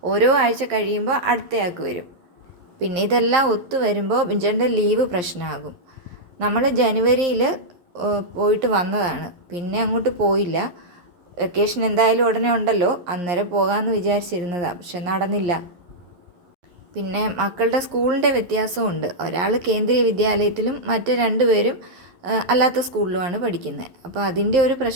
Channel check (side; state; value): left; late; 11 ms